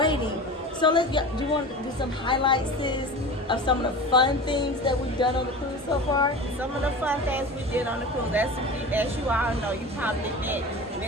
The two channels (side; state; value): both; normal; correlation 0.32